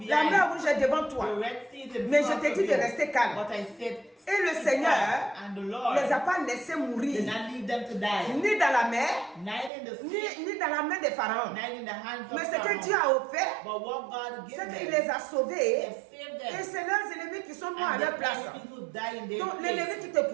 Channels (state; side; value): drops out; left; at 9.7 s